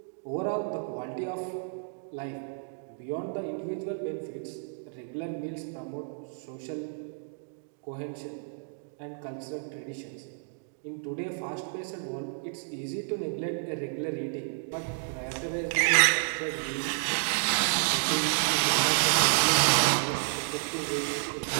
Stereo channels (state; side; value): silent; left; digital silence